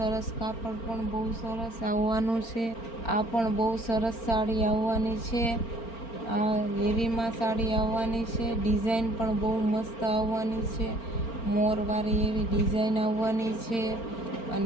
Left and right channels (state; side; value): late; right; 4.4 ms